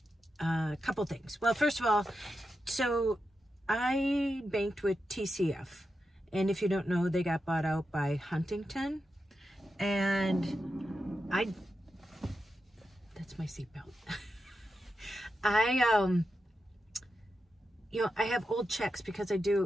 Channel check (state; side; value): normal; both; correlation 0.88